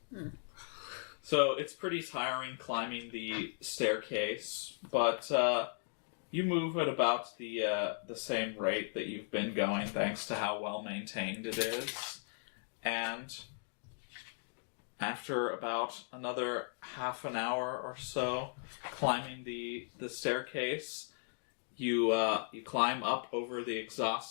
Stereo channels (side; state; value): right; silent; digital silence